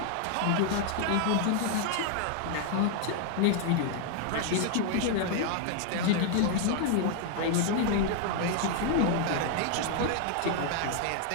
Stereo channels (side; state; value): both; different; correlation 0.00